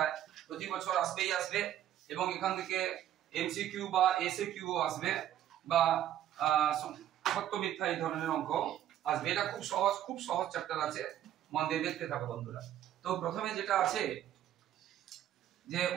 প্রতি বছর আসবেই আসবে, এবং এখান থেকে এমসিকিউ বা এসএকিউ আসবে, বা সত্য মিথ্যা এই ধরনের অঙ্ক আসবে। এটা খুব সহজ চ্যাপ্টার আছে, মন দিয়ে দেখতে থাকো বন্ধুরা। তো প্রথমে যেটা আছে যে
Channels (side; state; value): left; quieter; 11.6 dB